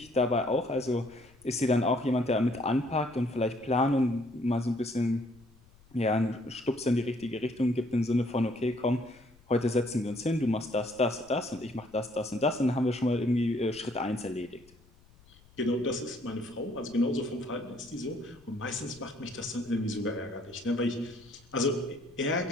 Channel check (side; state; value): left; noise; rumble, 27 dB below the sound